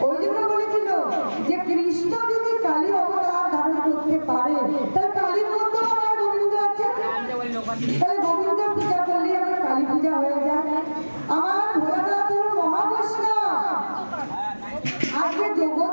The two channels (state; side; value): inverted; both; correlation -1.00